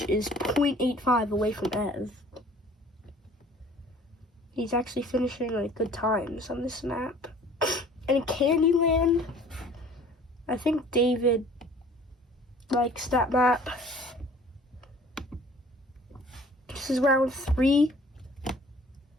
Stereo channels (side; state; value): both; normal; correlation 0.51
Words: is 0.85 away from Ev. He's actually finishing like good times on this map. And in Candyland, I think David likes that map. This is round 3.